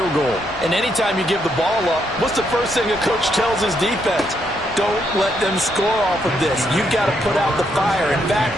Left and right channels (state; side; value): normal; both; correlation 0.76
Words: goal. And anytime you give the ball up, what's the first thing a coach tells his defense? don't let them score off of this. You've got to put out the fire. In